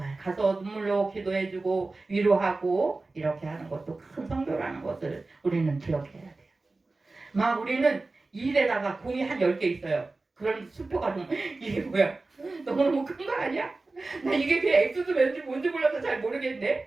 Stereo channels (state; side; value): quieter; left; 3.4 dB